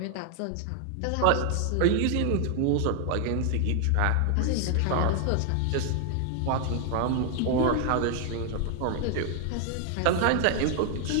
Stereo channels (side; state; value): both; different; correlation 0.00